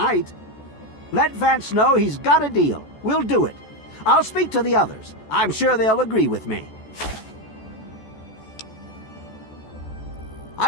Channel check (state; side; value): late; right; 14 ms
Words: Let Vance know he's got a deal. We'll do it. I'll speak to the others. I'm sure they'll agree with me.